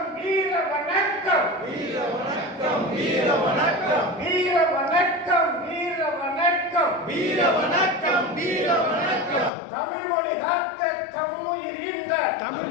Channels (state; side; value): drops out; right; at 9.5 s